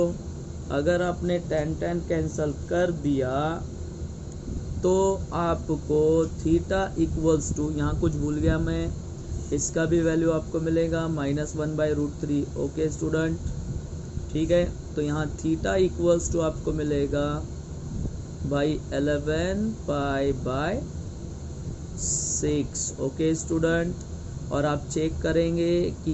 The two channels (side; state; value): both; identical; correlation 1.00